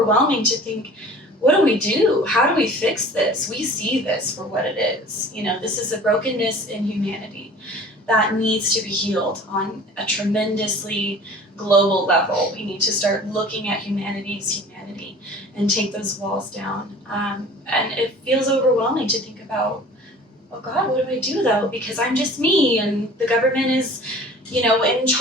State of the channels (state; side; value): normal; both; correlation 0.45